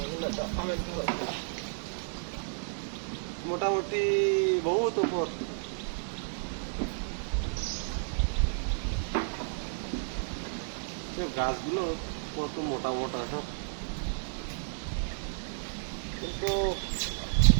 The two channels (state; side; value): silent; left; digital silence